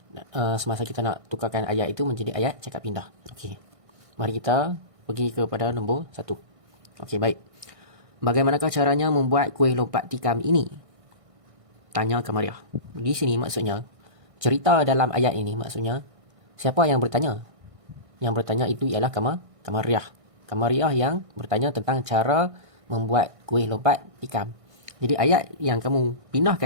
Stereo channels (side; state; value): left; late; 1.6 ms